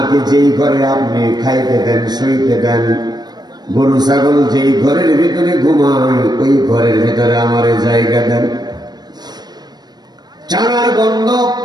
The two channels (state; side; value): late; left; 0.20 ms